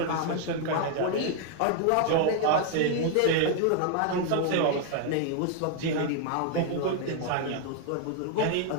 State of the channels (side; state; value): both; different; correlation 0.00